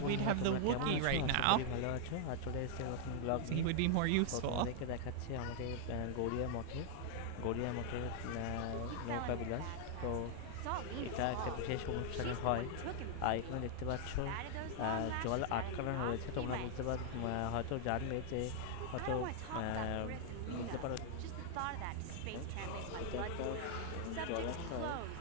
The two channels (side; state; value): both; different; correlation 0.00